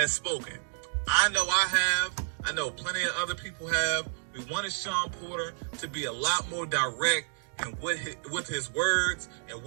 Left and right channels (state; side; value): silent; left; digital silence